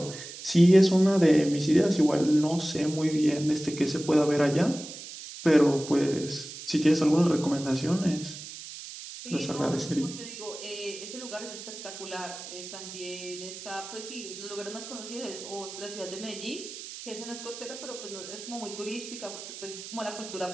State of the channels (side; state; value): right; noise; hiss, 12 dB below the sound